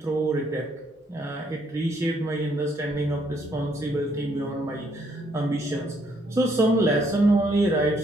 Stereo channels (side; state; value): both; normal; correlation 0.70